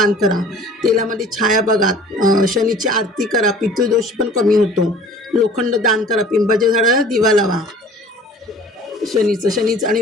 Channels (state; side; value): normal; both; correlation 0.47